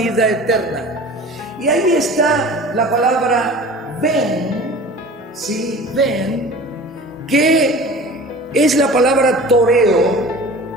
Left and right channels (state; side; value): normal; both; correlation 0.40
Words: eterna. Y ahí está la palabra ven, ¿sí? Ven, que es la palabra toreo,